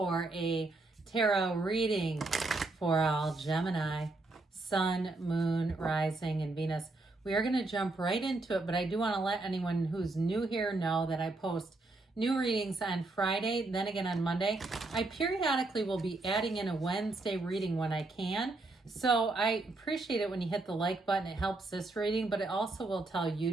a tarot reading for all Gemini, Sun, Moon, Rising, and Venus. We are going to jump right into it, but I do want to let anyone who's new here know that I post new readings on Friday, then again on Monday. I periodically will be adding in a Wednesday reading when I can. So I appreciate it when you hit the like button. It helps this reading, but it also will tell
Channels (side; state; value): left; quieter; 3.1 dB